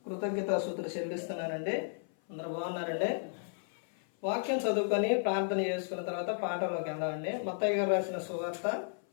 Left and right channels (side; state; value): right; silent; 55 dB below the other